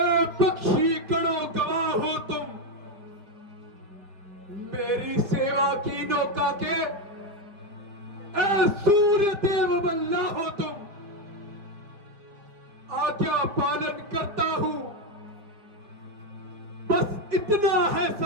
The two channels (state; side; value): late; left; 5.0 ms